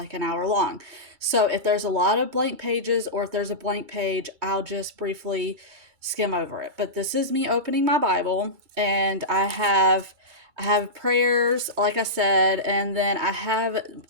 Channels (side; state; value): left; late; 2.3 ms